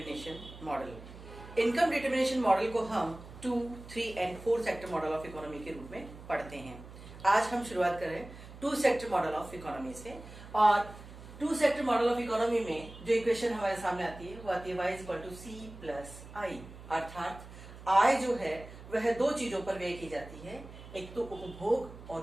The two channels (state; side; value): noise; right; hum, 16 dB below the sound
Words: model. Income determination model को हम 2, 3 and 4 sector model of economy के रूप में पढ़ते हैं। आज हम शुरुआत करें 2 सेक्टर मॉडल ऑफ इकोनॉमी से। और 2 सेक्टर मॉडल ऑफ इकोनॉमी में जो इक्वेशन हमारे सामने आती है वो आती है y = c+i, अर्थात आय जो है वह दो चीजों पर व्यय की जाती है, एक तो उपभोग और